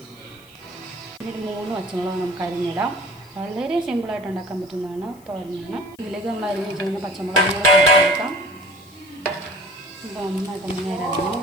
ഒരു 3 പച്ചമുളക് നമുക്ക് അരിഞ്ഞിടാം. വളരെ സിമ്പിളായിട്ട് ഉണ്ടാക്കാൻ പറ്റുന്നതാണ് തോരനാണ്. ഇതിലേക്ക് നമ്മൾ അരിഞ്ഞ് വെച്ചിരുന്ന പച്ചമുളക് കൊടുക്കാം. ഇത് നന്നായിട്ട് നേരം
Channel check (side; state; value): left; noise; hiss, 27 dB below the sound